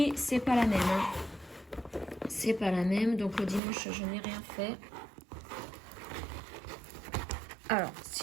c'est pas la même. C'est pas la même. Donc, le dimanche, je n'ai rien fait. Alors,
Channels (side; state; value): left; drops out; at 3.6 s